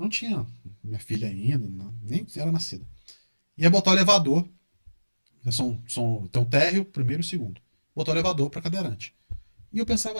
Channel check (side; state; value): both; inverted; correlation -1.00